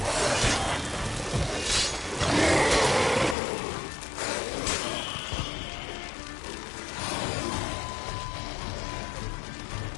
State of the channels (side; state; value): right; drops out; at 3.4 s